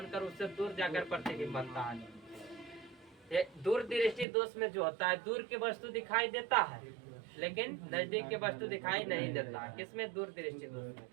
उससे दूर जाकर प्रतिबिंब बनता है। ये दूर दृष्टि दोष में जो होता है, दूर की वस्तु दिखाई देता है लेकिन नजदीक की वस्तु दिखाई नहीं देता। किसमें? दूर दृष्टि दोष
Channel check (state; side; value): drops out; left; at 4.2 s